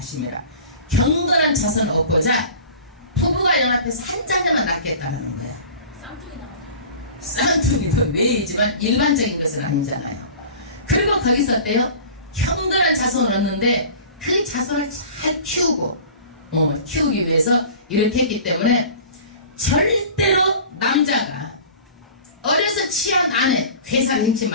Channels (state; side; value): inverted; both; correlation -0.40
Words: 경건한 자손을 얻고자 부부가 연합해서 한 자녀만 낳겠다는 거야. 쌍둥이도 왜이지만 일반적인 것은 아니잖아요. 그리고 거기서 어때요? 경건한 자손을 얻는데 그 자손을 잘 키우고 키우기 위해서 이렇게 했기 때문에 절대로 남자가 어려서 취한 아내 괴사를 행치